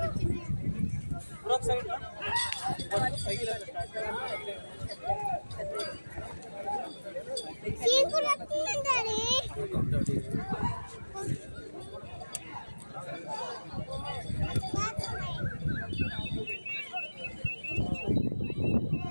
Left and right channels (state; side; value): inverted; both; correlation -1.00